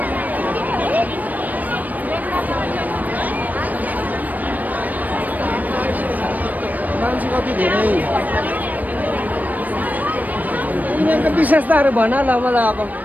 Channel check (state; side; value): late; left; 0.080 ms